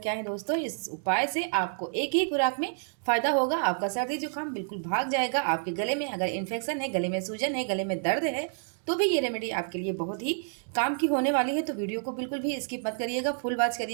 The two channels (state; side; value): silent; left; digital silence